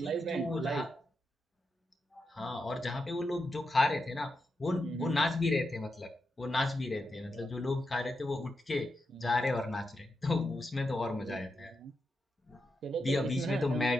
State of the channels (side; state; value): both; normal; correlation 0.86